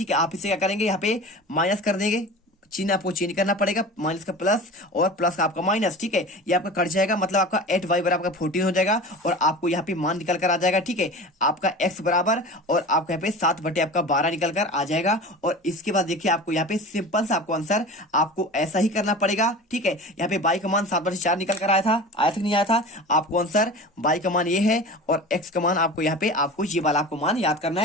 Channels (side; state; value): both; normal; correlation 0.35